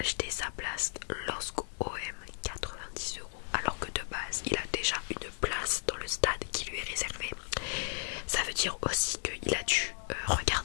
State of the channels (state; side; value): silent; right; 55 dB below the other